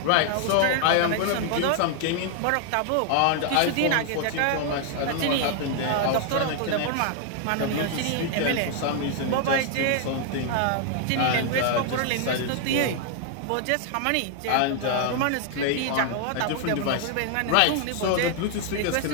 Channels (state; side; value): different; both; correlation 0.00